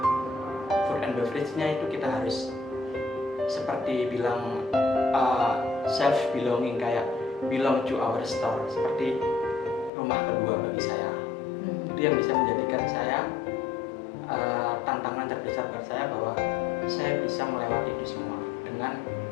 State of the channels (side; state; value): right; drops out; at 9.9 s